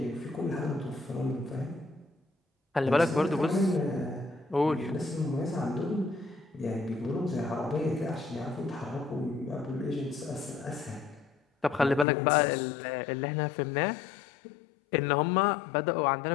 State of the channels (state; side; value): drops out; right; at 12.1 s